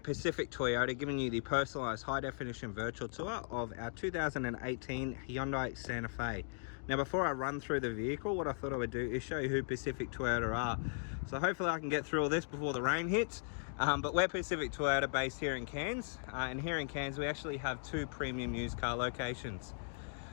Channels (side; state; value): right; silent; digital silence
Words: Pacific Toyota, giving you the personalised high-definition virtual tour of our 2018 Hyundai Santa Fe. Now before I run through the vehicle, what I thought I would do is show you who Pacific Toyota are. So hopefully I can get through all this before the rain hits. But we're Pacific Toyota based here in Cairns. And here in Cairns we actually have 2 premium used car locations.